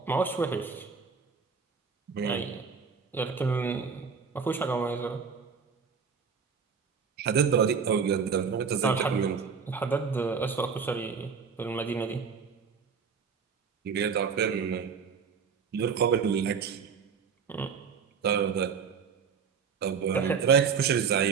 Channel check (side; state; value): left; quieter; 6.1 dB